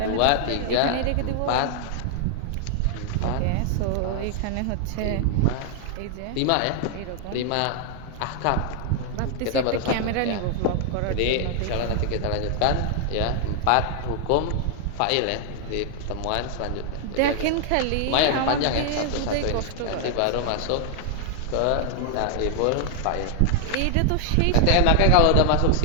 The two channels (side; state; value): both; different; correlation 0.00